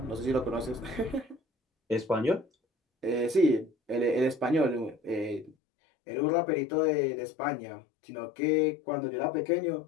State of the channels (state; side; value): drops out; right; at 5.6 s